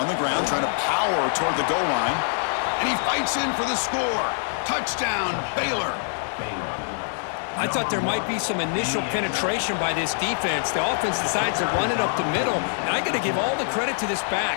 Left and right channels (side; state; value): right; silent; 62 dB below the other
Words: On the ground, trying to power toward the goal line. And he fights in for the score. Touchdown, Baylor. I thought there might be some initial penetration by this defense. The offense decides to run it up the middle, and I got to give all the credit to this